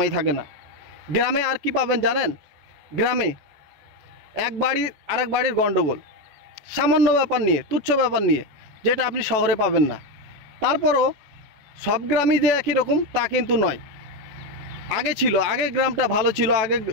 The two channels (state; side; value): late; left; 14 ms